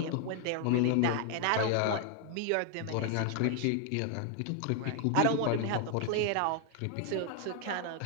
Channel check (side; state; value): both; different; correlation 0.00